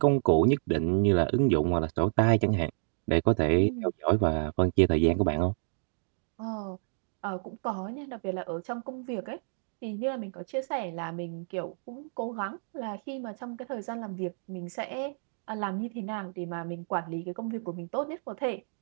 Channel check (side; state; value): left; silent; digital silence